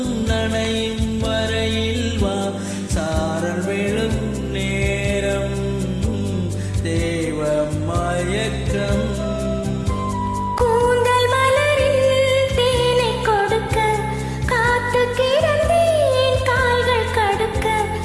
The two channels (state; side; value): identical; both; correlation 1.00